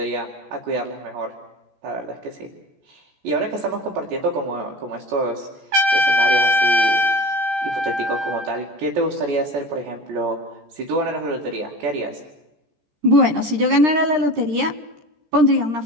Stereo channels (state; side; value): late; left; 14 ms